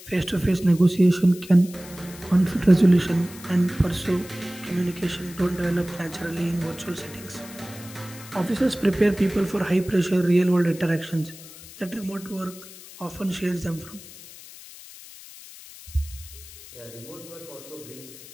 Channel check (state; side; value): noise; left; hiss, 17 dB below the sound